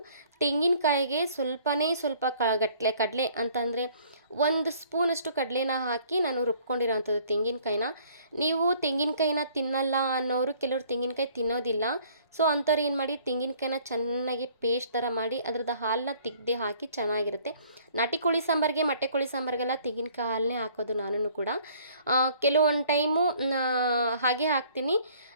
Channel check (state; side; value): inverted; both; correlation -0.58